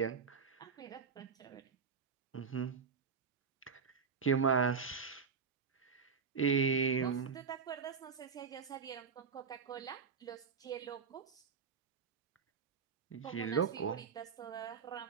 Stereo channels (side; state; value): left; quieter; 5.9 dB